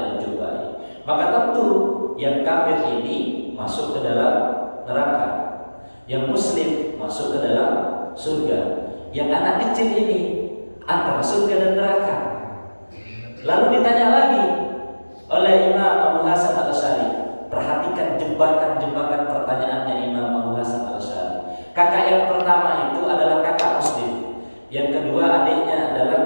al-Jubai? Maka tentu yang kafir ini masuk ke dalam neraka, yang muslim masuk ke dalam surga, yang anak kecil ini antara surga dan neraka. Lalu ditanya lagi oleh Imam Abu Hasan al-Asy'ari. Perhatikan jebakan-jebakan pertanyaannya Imam Abu Hasan al-Asy'ari. Kakak yang pertama itu adalah kakak muslim. Yang kedua adiknya adalah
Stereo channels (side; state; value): both; inverted; correlation -1.00